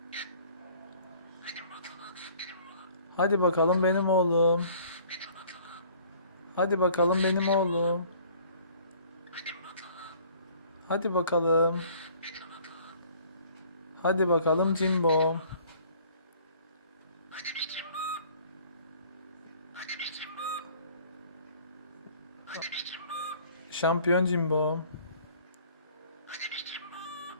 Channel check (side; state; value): both; inverted; correlation -0.54